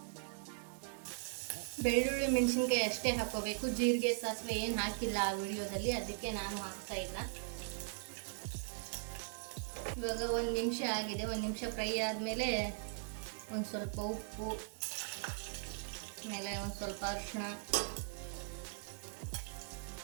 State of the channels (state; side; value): silent; left; 51 dB below the other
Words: ಬೆಳ್ಳುಳ್ಳಿ ಮೆಣಸಿನ್ಕಾಯಿ ಅಷ್ಟೇ ಹಾಕೋಬೇಕು. ಜೀರಿಗೆ ಸಾಸಿವೆ ಏನು ಹಾಕಿಲ್ಲ ಆ ವಿಡಿಯೋದಲ್ಲಿ, ಅದಕ್ಕೆ ನಾನು ಹಾಕ್ತಾ ಇಲ್ಲ. ಇವಾಗ 1 ನಿಮಿಷ ಆಗಿದೆ. 1 ನಿಮಿಷ ಫ್ರೈ ಆದಮೇಲೆ ಒಂದು ಸ್ವಲ್ಪ ಉಪ್ಪು, ಆಮೇಲೆ ಒಂದು ಸ್ವಲ್ಪ ಅರಿಶಿಣ,